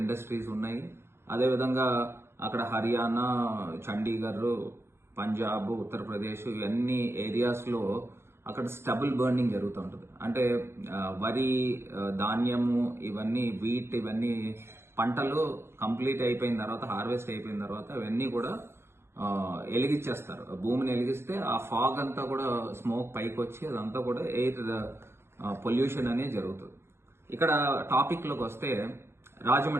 ఇండస్ట్రీస్ ఉన్నాయి. అదేవిధంగా అక్కడ హర్యానా, చండీగఢ్, పంజాబ్, ఉత్తరప్రదేశ్ ఇవన్నీ ఏరియాస్ లో అక్కడ స్టబుల్ బర్నింగ్ జరుగుతూ ఉంటుంది. అంటే వరి, ధాన్యము, ఇవన్నీ వీట్, ఇవన్నీ పంటలు కంప్లీట్ అయిపోయిన తర్వాత, హార్వెస్ట్ అయిపోయిన తర్వాత ఇవన్నీ కూడా ఎలిగించేస్తారు. భూమిని ఎలిగిస్తే ఆ ఫాగ్ అంతా కూడా స్మోక్ పైకి వచ్చి అదంతా కూడా ఎయిర్ పొల్యూషన్ అనేది జరుగుతుంది. ఇక్కడ టాపిక్ లోకి వస్తే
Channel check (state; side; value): late; left; 0.12 ms